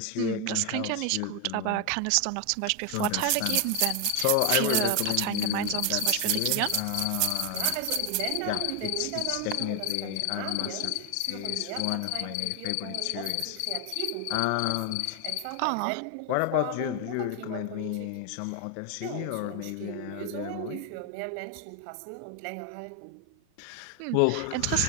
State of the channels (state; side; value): different; both; correlation 0.01